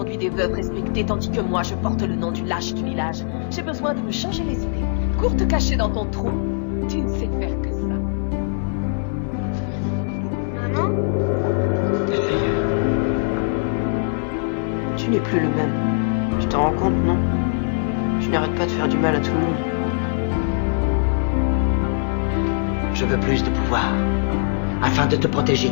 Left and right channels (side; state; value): right; silent; digital silence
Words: des veuves respectées, tandis que moi, je porte le nom du lâche du village. J'ai besoin de me changer les idées. Cours te cacher dans ton trou. Tu ne sais faire que ça. Maman? Tu n'es plus le même. Tu t'en rends compte, non? Tu n'arrêtes pas de faire du mal à tout le monde. Je veux plus de pouvoir, afin de te protéger,